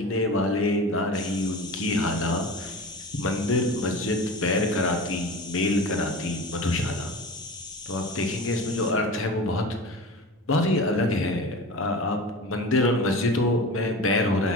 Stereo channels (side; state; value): both; normal; correlation 0.33